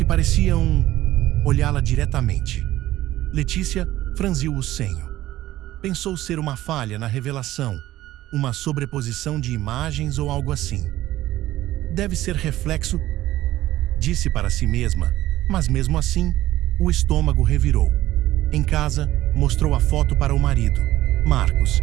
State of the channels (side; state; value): left; quieter; 15.2 dB